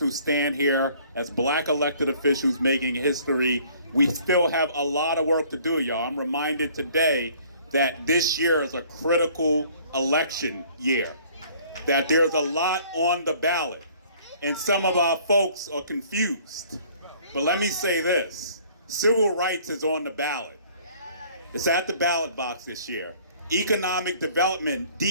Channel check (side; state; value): both; inverted; correlation -0.56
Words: to stand here as black elected officials making history. We still have a lot of work to do, y'all. I'm reminded today that this year is a critical election year, that there's a lot on the ballot, and some of our folks are confused. But let me say this, civil rights is on the ballot. It's at the ballot box this year. Economic development,